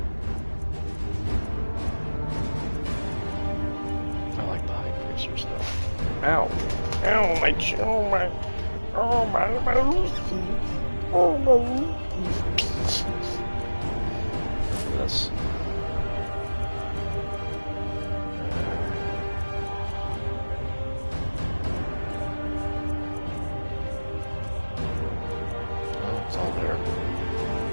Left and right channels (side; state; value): both; inverted; correlation -1.00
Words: I like the high piercer stuff. Ow! Ow! My chin! Oh my! Oh my! My Lucy! Oh my Lucy! This.